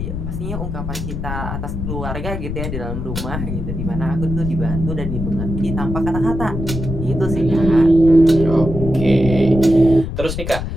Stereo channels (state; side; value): noise; left; rumble, 5 dB below the sound